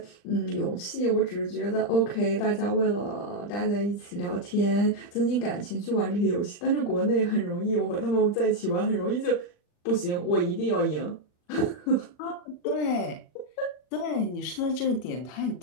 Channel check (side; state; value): right; late; 40 ms